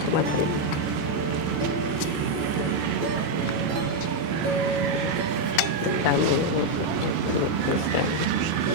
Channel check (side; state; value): left; late; 14 ms